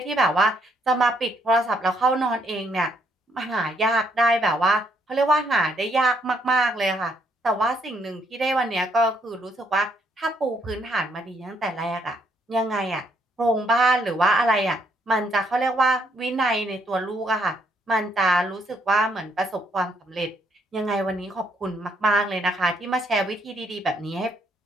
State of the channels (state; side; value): normal; both; correlation 0.71